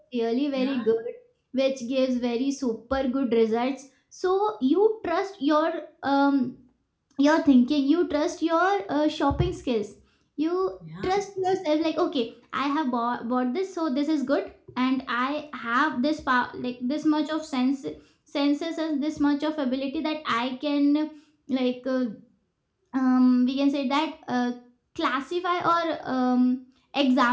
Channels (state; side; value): identical; both; correlation 1.00